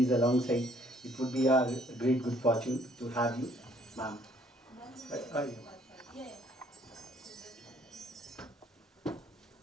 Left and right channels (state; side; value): normal; both; correlation 0.63